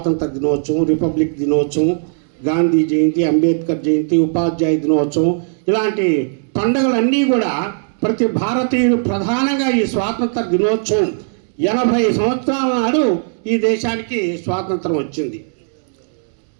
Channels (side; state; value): left; silent; digital silence